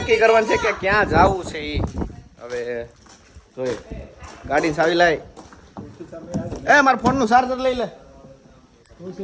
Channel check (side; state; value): both; identical; correlation 1.00